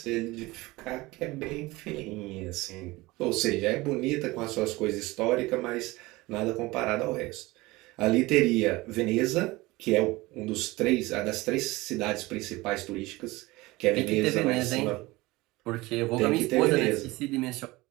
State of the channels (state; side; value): quieter; left; 21.0 dB